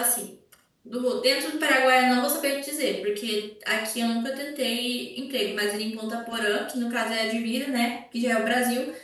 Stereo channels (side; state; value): both; identical; correlation 1.00